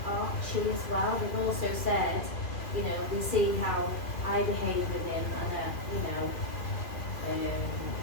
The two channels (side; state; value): right; late; 2.6 ms